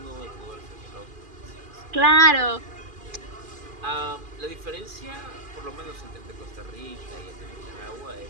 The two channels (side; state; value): left; late; 2.4 ms